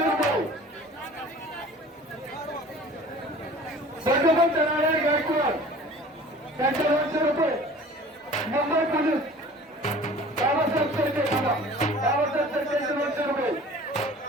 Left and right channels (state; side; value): normal; both; correlation 0.45